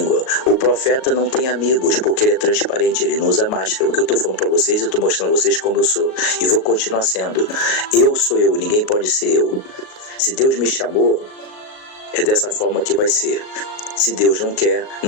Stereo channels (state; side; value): late; right; 38 ms